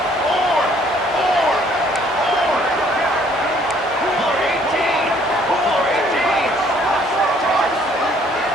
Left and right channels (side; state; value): both; normal; correlation 0.61